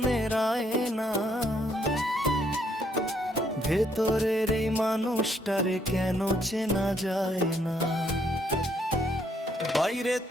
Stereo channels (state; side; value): normal; both; correlation 0.71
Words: আয়না, ভেতরের এই মানুষটারে কেন চেনা যায় না। বাইরে